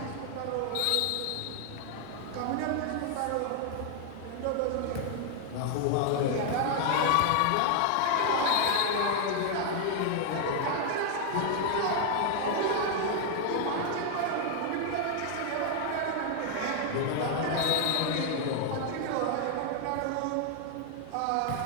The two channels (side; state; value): both; different; correlation 0.00